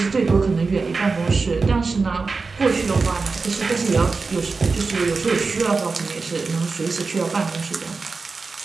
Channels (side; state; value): left; quieter; 4.3 dB